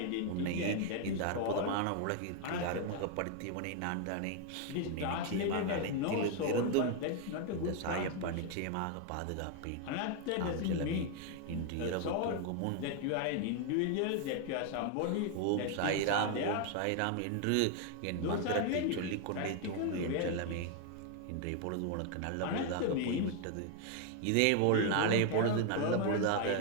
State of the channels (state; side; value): different; both; correlation 0.01